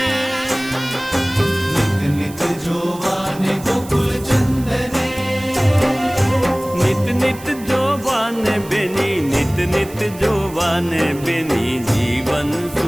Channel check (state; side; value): noise; right; hiss, 18 dB below the sound